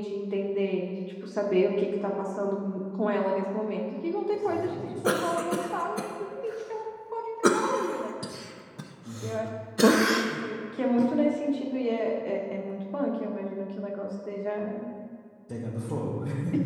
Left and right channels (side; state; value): both; identical; correlation 1.00